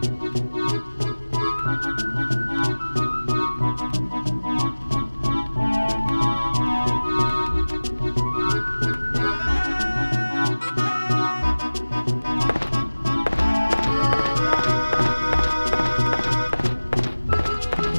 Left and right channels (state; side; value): inverted; both; correlation -1.00